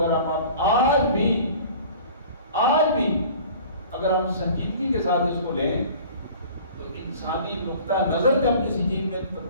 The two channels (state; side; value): inverted; both; correlation -0.46